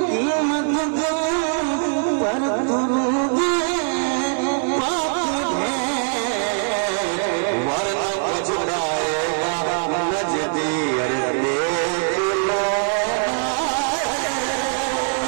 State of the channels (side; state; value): left; silent; digital silence